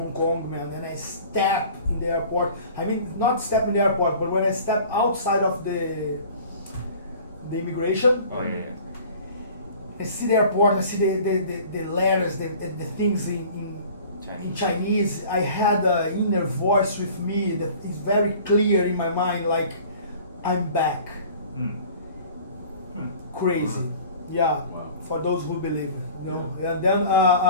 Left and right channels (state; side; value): inverted; both; correlation -0.46